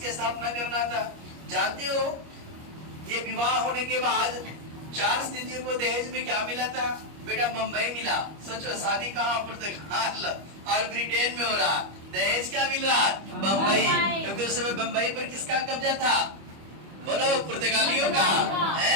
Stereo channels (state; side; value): late; left; 25 ms